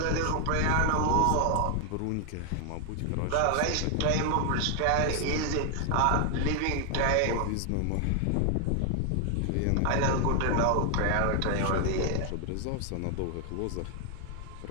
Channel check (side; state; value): both; different; correlation 0.00